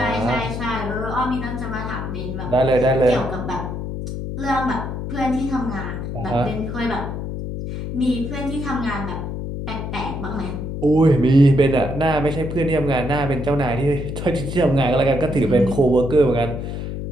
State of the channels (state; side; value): noise; left; hum, 5 dB below the sound